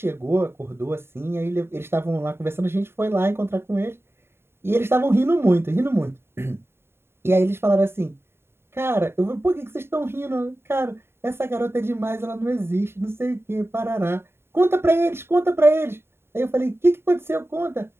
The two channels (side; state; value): left; late; 0.11 ms